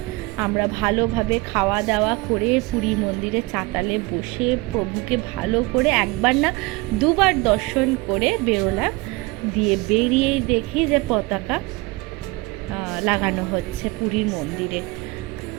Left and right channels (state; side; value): quieter; left; 23.7 dB